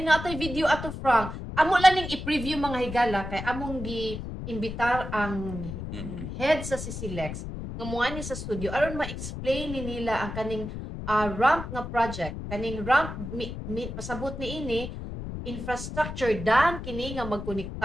natay video ato Frank. Amo lang ning i-preview mga higala kay among imbitar ang head sa CCLEX nga muani sa studio aron ma-explain ni nila ang kaning ramp nga project. Kaning ramp pasabot ni ini infrastructure dan kini nga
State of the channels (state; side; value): noise; left; rumble, 7 dB below the sound